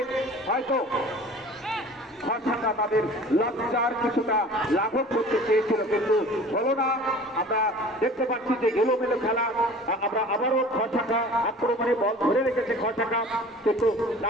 হয়তো গড় শাখা তাদের লজ্জার কিছুটা লাঘব করতে চেয়েছিল, কিন্তু হলো না। আমরা দেখতে পাচ্ছি যে এলোমেলো খেলা। আমরা আবারও গড় শাখা আক্রমণে বল ধরে রেখেছে গড় শাখা, কিন্তু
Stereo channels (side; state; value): both; normal; correlation 0.44